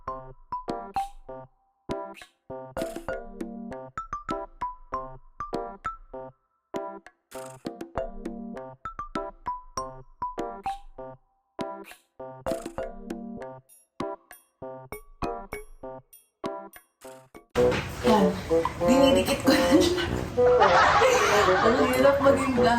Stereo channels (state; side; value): identical; both; correlation 1.00